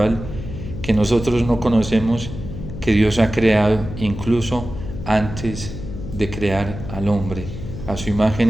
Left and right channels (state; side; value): noise; left; hum, 10 dB below the sound